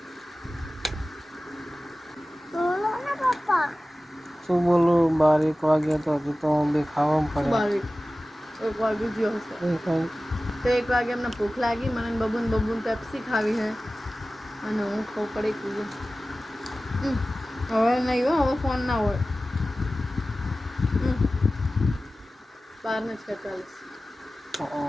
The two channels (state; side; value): normal; both; correlation 0.96